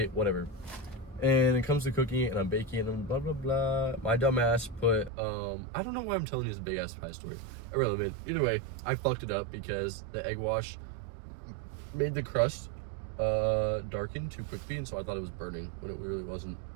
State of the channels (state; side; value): drops out; left; at 5.1 s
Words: whatever. And it comes to cooking, and I'm baking, and blah, blah, blah. My dumb ass put, I don't know why I'm telling you this big ass pie story. Irrelevant. Either way, I fucked it up because the egg wash made the crust darken too quickly, and so I thought it was burning when it really wasn't.